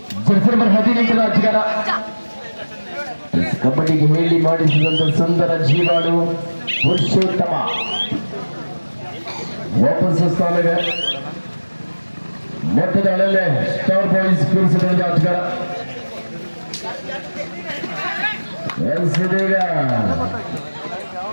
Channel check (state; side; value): inverted; both; correlation -1.00